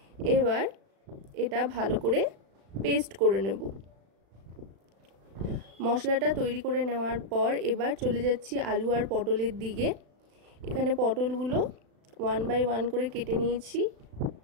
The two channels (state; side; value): late; left; 36 ms